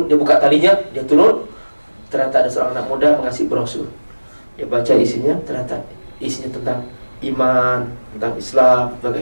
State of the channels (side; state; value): both; inverted; correlation -1.00